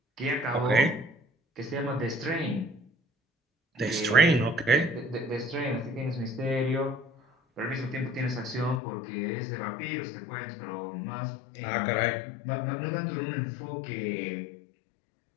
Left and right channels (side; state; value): right; drops out; at 8.8 s